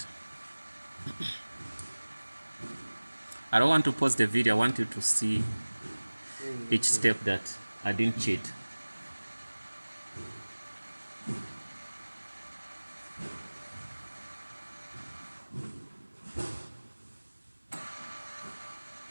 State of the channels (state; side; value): inverted; both; correlation -1.00